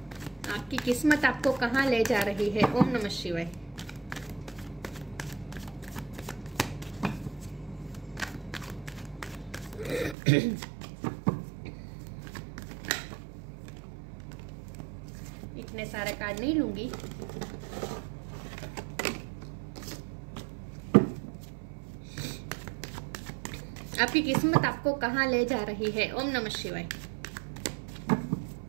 आपकी किस्मत आपको कहाँ ले जा रही है। ओम नमः शिवाय। इतने सारे कार्ड नहीं लूंगी। आपकी किस्मत आपको कहाँ ले जा रही है। ओम नमः शिवाय।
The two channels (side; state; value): left; drops out; at 10.2 s